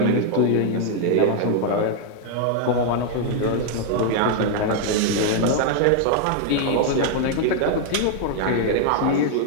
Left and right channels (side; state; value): both; different; correlation 0.00